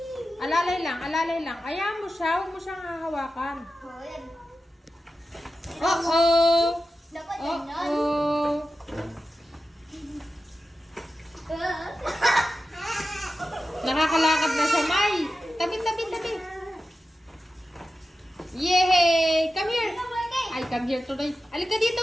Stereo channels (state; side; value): normal; both; correlation 0.93